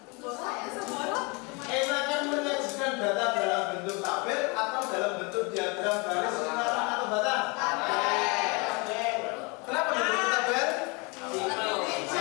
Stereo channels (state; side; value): quieter; right; 29.6 dB